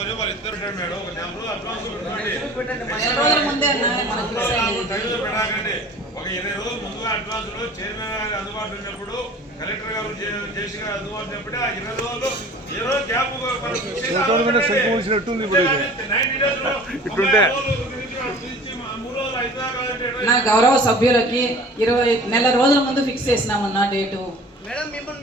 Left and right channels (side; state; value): both; normal; correlation 0.45